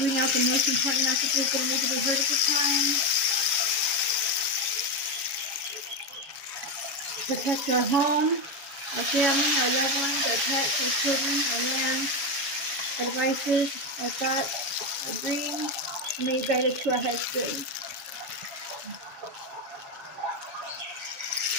out the most important messages that need to be heard at this time. Protect our home, our family, our loved ones, our pets, our children, our land, our devices, our thoughts, our dreams. May you guide us to our highest good.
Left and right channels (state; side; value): late; left; 7.3 ms